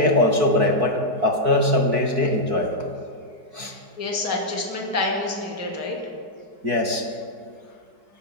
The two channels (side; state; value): left; late; 4.6 ms